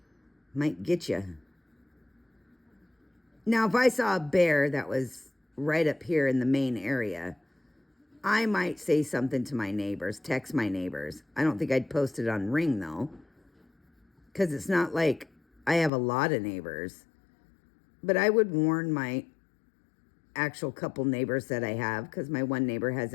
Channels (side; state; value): right; drops out; at 15.9 s